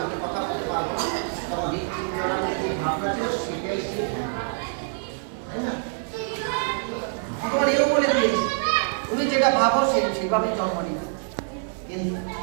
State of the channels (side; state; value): left; silent; digital silence